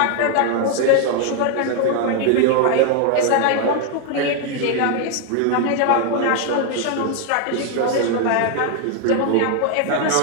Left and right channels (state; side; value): different; both; correlation 0.00